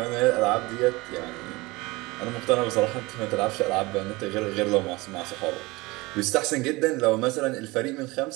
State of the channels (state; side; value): quieter; left; 22.6 dB